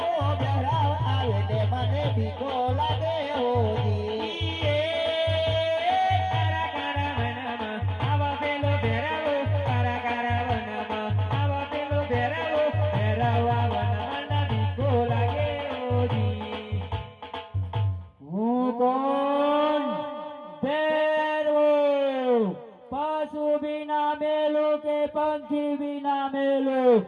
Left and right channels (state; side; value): identical; both; correlation 1.00